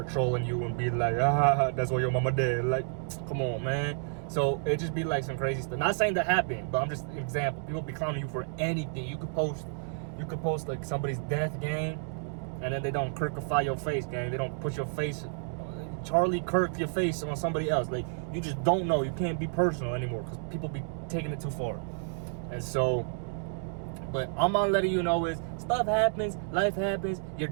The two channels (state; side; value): silent; left; digital silence